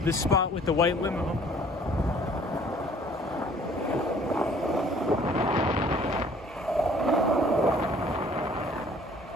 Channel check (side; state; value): both; normal; correlation 0.55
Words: the spot with the white limo.